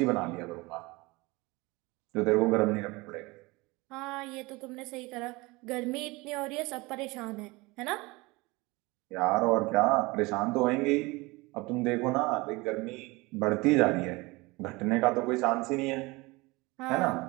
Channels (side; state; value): left; quieter; 23.6 dB